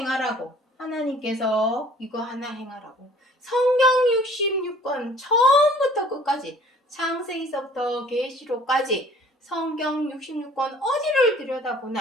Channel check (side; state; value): both; normal; correlation 0.53